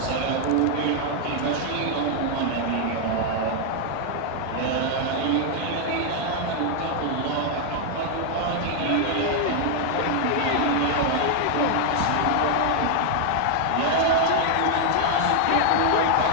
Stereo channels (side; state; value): both; different; correlation 0.00